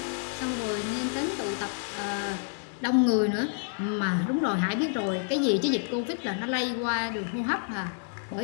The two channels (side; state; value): right; silent; 59 dB below the other